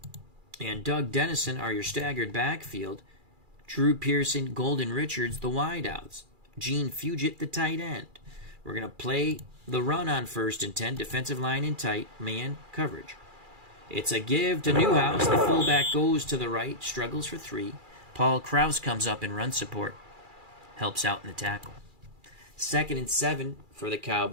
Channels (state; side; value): late; left; 2.4 ms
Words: and Doug Dennison are your staggered backfield. Drew Pearson, Golden Richards, the wideouts. Gene Fugit, the tight end. We're going to play the run on 1st and 10. Defensive line in tight. Man coverage. It's a give to Newhouse. The fullback goes to the right. Struggles for 3. Paul Krause comes up in run support. Helps out in the tackle. 2nd and 7 for the